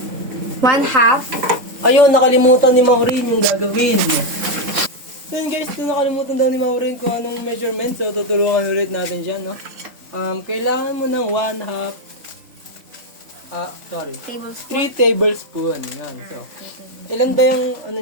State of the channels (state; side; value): late; left; 3.7 ms